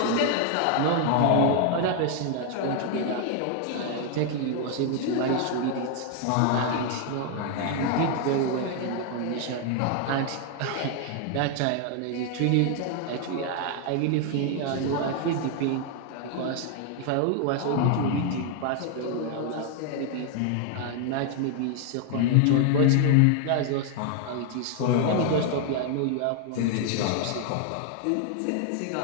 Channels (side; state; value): both; different; correlation 0.00